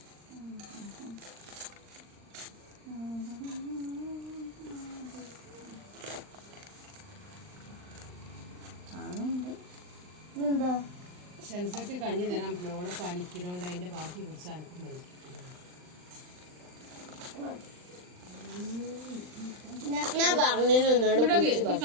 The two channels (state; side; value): late; left; 39 ms